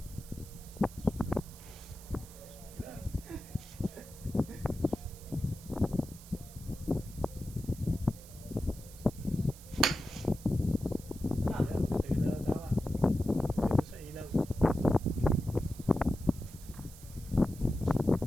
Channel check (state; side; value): noise; right; hiss, 19 dB below the sound